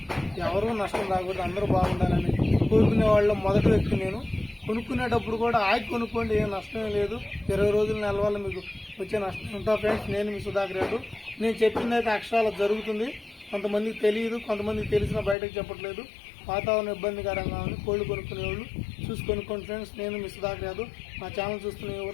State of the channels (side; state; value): right; drops out; at 15.4 s